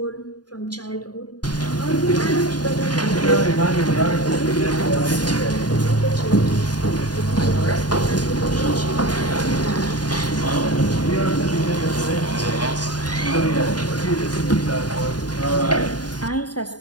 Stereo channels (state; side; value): late; right; 0.70 ms